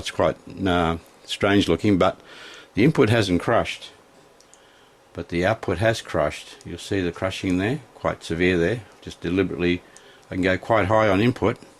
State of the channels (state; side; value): identical; both; correlation 1.00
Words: quite strange looking, but the input hasn't crushed, but the output has crushed. You'll see the crushing there, quite severe there. Just deliberately, I can go quite high on input,